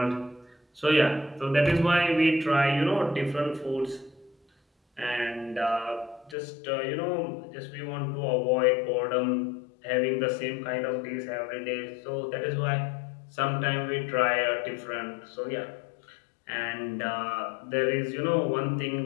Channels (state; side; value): drops out; right; at 6.4 s